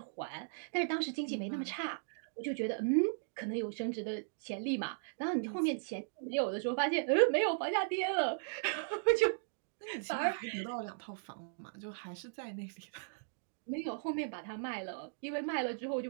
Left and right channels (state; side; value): silent; left; digital silence